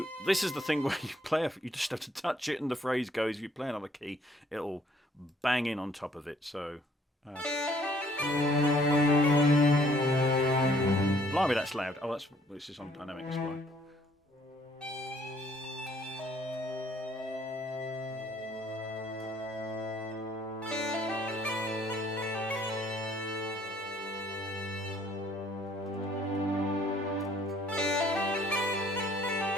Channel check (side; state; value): both; normal; correlation 0.62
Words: this is the thing where you play, you just have to touch it and the phrase goes. If you play another key, it'll bang in on top of it. So, blimey, that's loud. Oh, this is on dynamic display.